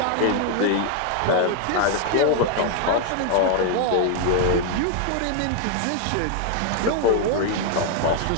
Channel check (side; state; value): both; different; correlation 0.00